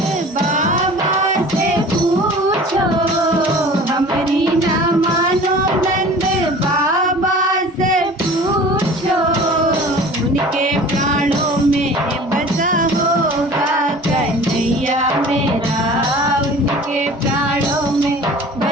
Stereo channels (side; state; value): both; normal; correlation 0.43